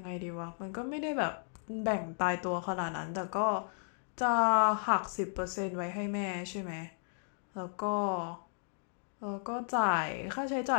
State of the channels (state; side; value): silent; right; 55 dB below the other